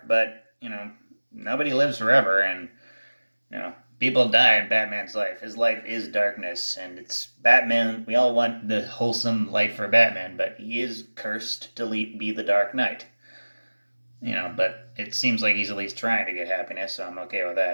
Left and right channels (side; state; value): both; inverted; correlation -1.00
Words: but nobody lives forever, and people die in Batman's life. His life is darkness, and it's Batman. We all want the wholesome life for Batman, but he is cursed to be the Dark Knight. But it seems like he's at least trying to get happiness, so I'm okay with